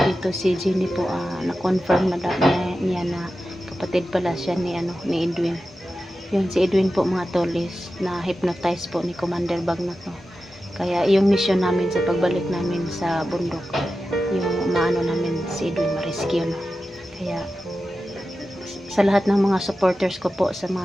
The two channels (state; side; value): normal; both; correlation 0.93